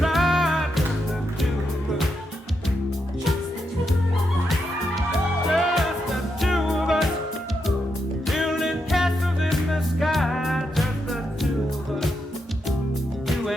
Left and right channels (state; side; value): normal; both; correlation 0.83